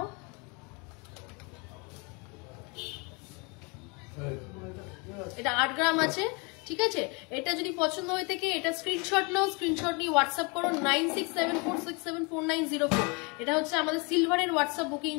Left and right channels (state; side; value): quieter; right; 30.8 dB